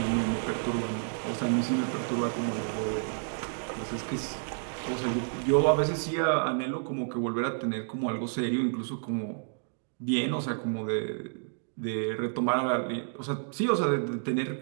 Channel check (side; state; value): left; silent; digital silence